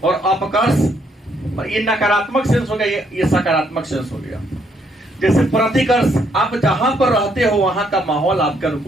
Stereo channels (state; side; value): normal; both; correlation 0.71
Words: और अपकर्ष ये नकारात्मक सेंस हो गया, ये सकारात्मक सेंस हो गया। जैसे प्रतिकर्ष, आप जहां पर रहते हो वहां का माहौल आपके